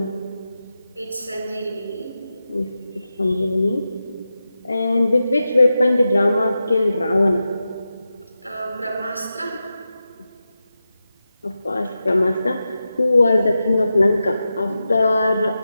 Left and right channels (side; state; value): both; inverted; correlation -0.91